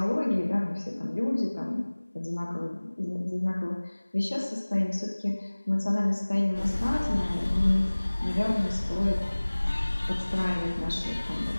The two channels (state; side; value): inverted; both; correlation -1.00